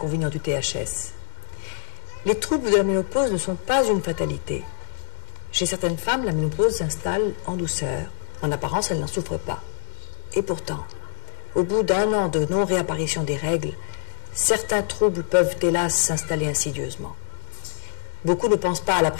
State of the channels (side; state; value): right; silent; digital silence